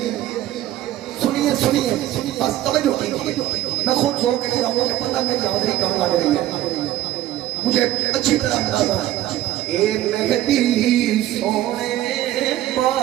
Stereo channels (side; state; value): left; quieter; 13.8 dB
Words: سنیے سنیے بس توجہ کیجیے میں خود سو کے رہا ہوں کہ پتہ میری حاضری کہاں لگ رہی ہے مجھے اچھی طرح اندازہ ہے اے مہدی سونے